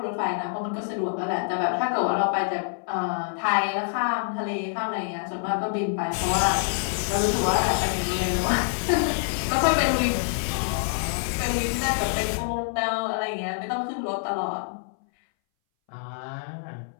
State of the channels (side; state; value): right; silent; 60 dB below the other